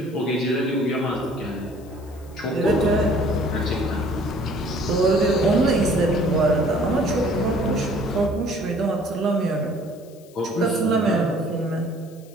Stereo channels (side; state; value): left; noise; hiss, 27 dB below the sound